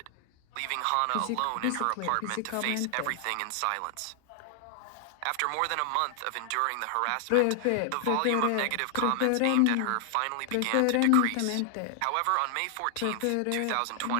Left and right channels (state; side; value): different; both; correlation 0.00